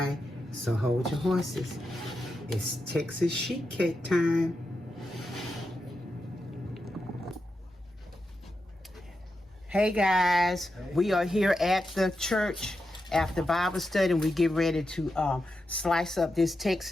So hold your horses. It's Texas sheet cake time. Hey guys, we are here at the church after Bible study, and we get ready to slice up this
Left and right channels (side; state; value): both; normal; correlation 0.88